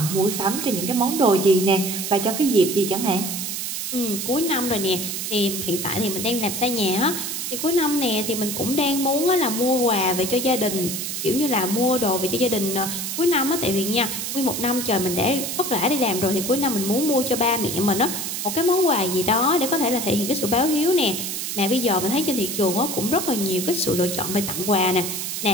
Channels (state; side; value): noise; right; hiss, 4 dB below the sound